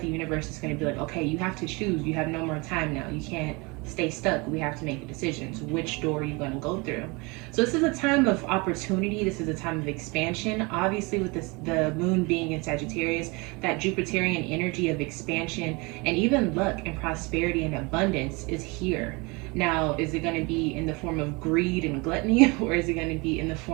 the universe is going to be like, okay, you have to choose. You have no more time now. You can't stay stuck. We have to make decisions. Which door are you going to go through? So this is a time of opportunity. This is a time of expansion. Obviously, with the moon being in Sagittarius, that Jupiterian energy of expansion and even luck and prosperity and abundance is here. Now, is it going to be in the form of greed and gluttony, or is it going to be in the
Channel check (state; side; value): quieter; left; 27.2 dB